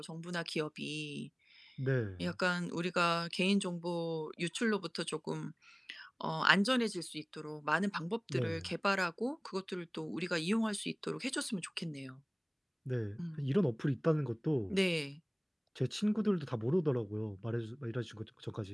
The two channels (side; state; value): both; identical; correlation 1.00